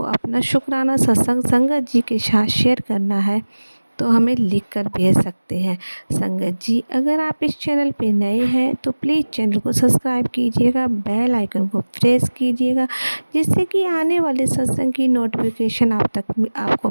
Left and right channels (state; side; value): inverted; both; correlation -1.00